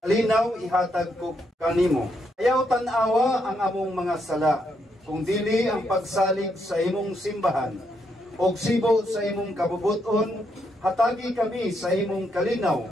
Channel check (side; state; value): both; normal; correlation 0.78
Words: kalinaw ihatag ko kanimo. Ayaw tan-awa ang among mga sala, kung dili ang pagsalig sa imong simbahan, og sibo sa imong kabubuton, hatagi kami sa imong kalinaw